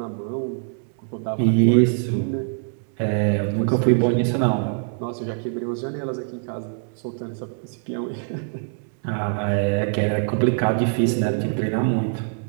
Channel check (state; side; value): silent; left; digital silence